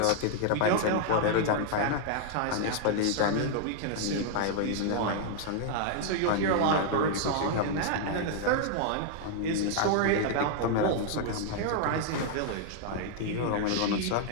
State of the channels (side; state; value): both; different; correlation 0.00